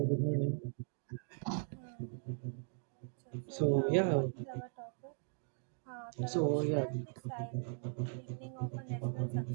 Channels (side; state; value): left; silent; 52 dB below the other